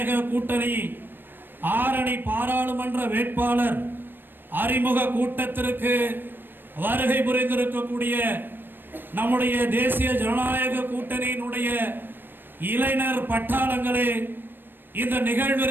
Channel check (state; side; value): late; left; 0.095 ms